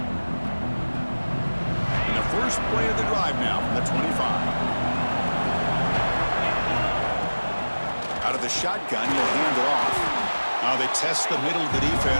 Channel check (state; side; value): inverted; both; correlation -1.00